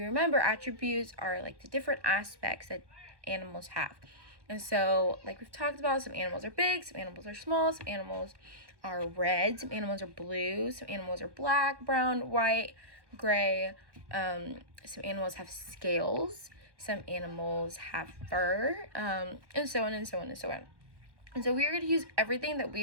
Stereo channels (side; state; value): left; late; 1.1 ms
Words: remember, attributes are like the different aspects that animals have. And so, like we've talked about, some animals are big, some animals are small, some animals are red, some animals are blue, some animals are black, brown, white, gray. Some animals have scales, some animals have fur, and so on and so on and so on. And so we are going to use everything that we